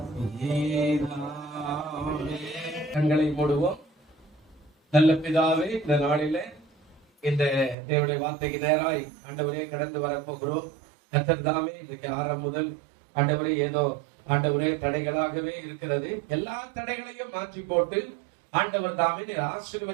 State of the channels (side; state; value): left; drops out; at 7.8 s